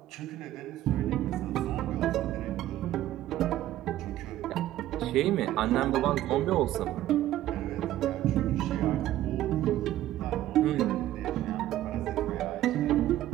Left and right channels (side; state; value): left; quieter; 13.8 dB